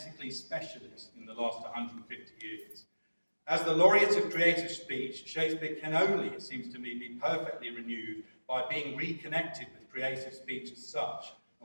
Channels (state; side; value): inverted; both; correlation -1.00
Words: specialist in the last 150 years. As the laureate of creative speech, Shakespeare can only, it seems to me, be perfectly renewed by being reconnected with creative speech as such,